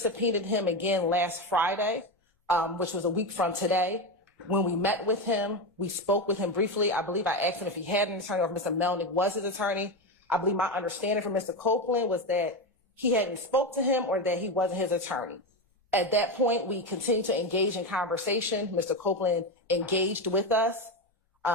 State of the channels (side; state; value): both; normal; correlation 0.15